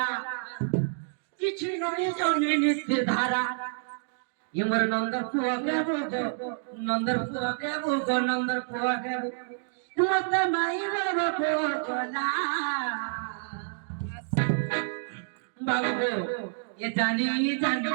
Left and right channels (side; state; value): left; silent; digital silence